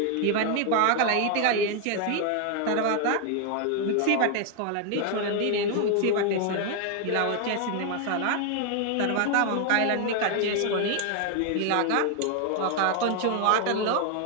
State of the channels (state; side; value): different; both; correlation 0.01